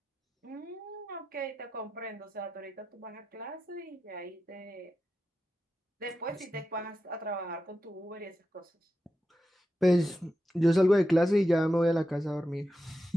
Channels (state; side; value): normal; both; correlation 0.90